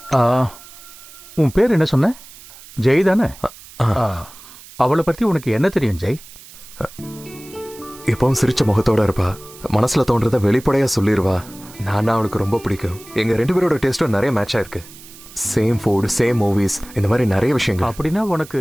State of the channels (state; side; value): noise; right; hiss, 19 dB below the sound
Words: உன் பேர் என்ன சொன்ன? ஜெய் தானே? அவளை பத்தி உனக்கு என்ன தெரியும் ஜெய்? எப்பவும் சிரிச்ச முகத்தோட இருப்பா. மனசுல தோன்றத வெளிப்படையா சொல்லிடுவா. நான் அவளுக்கு ரொம்ப பிடிக்கும். எங்க 2 பேரோட டேஸ்டும் நிறைய மேட்ச் ஆயிருக்கு. சேம் ஃபுட், சேம் மூவிஸ், இந்த மாதிரி நிறைய விஷயங்கள். அப்படின்னா உனக்கு